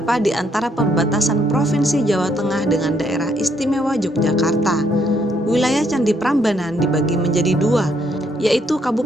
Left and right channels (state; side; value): normal; both; correlation 0.71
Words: di antara perbatasan Provinsi Jawa Tengah dengan daerah istimewa Yogyakarta. Wilayah Candi Prambanan dibagi menjadi 2, yaitu